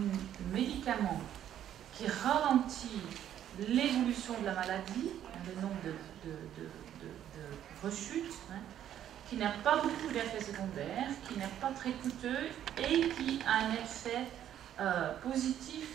médicament qui ralentit l'évolution de la maladie, le nombre de rechutes, hein, qui n'a pas beaucoup d'effets secondaires, qui n'est pas très coûteux et qui a un effet positif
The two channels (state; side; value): quieter; left; 10.8 dB